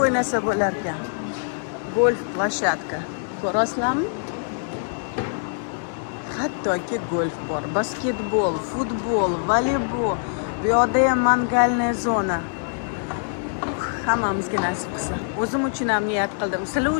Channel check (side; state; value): right; silent; digital silence